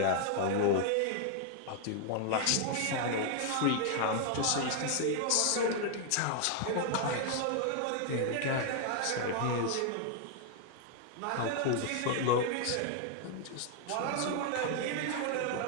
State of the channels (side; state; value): both; different; correlation 0.00